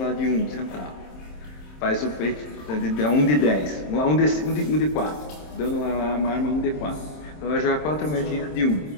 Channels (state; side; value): late; right; 27 ms